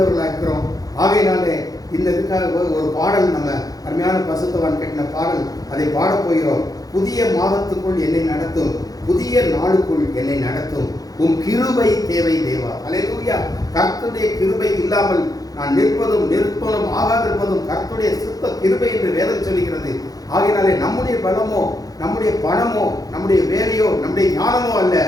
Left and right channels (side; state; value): right; late; 0.18 ms